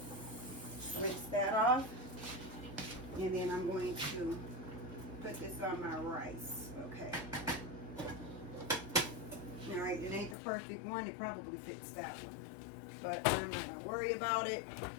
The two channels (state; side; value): drops out; right; at 10.4 s